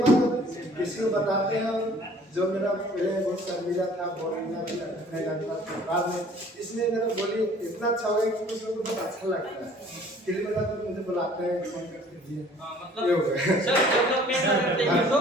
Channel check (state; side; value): normal; both; correlation 0.53